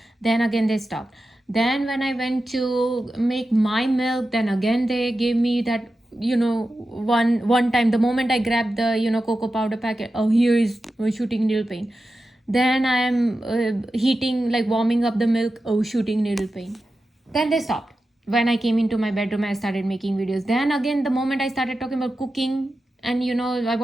Then again they stopped. Then when I went to make my milk, then again they gave me that, one time. The moment I grabbed the cocoa powder packet, here is shooting needle pain. Then I am heating, warming up the milk, shooting needle pain. Then they stopped. When I came into my bedroom, I started making videos. Then again, the moment I started talking about cooking, and I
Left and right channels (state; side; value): normal; both; correlation 0.92